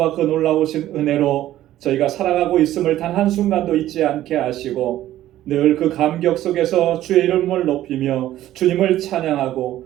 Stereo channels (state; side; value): quieter; left; 13.6 dB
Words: 그 놀라우신 은혜로 저희가 살아가고 있음을 단 한순간도 잊지 않게 하시고 늘 그 감격 속에서 주의 이름을 높이며 주님을 찬양하고